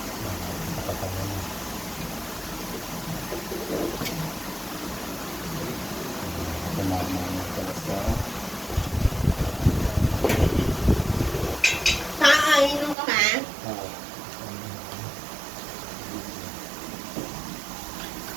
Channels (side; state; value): left; drops out; at 13.0 s